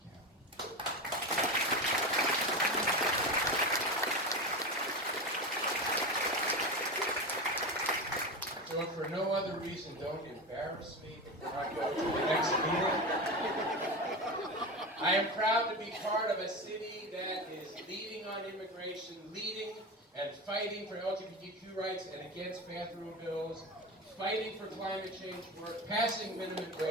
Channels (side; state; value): both; normal; correlation 0.22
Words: County. So if for no other reason, don't embarrass me before I go to the next meeting. I am proud to be part of a city that is leading on immigration, leading and fighting for LGBTQ rights and against bathroom bills, fighting for climate change work, passing minimum